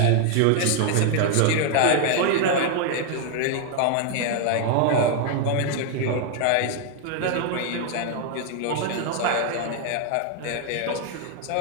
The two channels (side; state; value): both; different; correlation 0.00